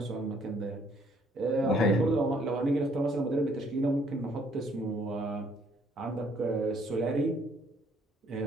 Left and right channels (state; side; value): normal; both; correlation 0.64